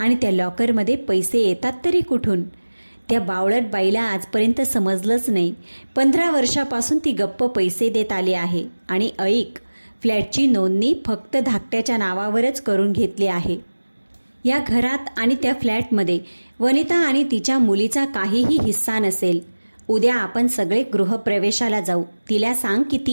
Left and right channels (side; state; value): both; inverted; correlation -1.00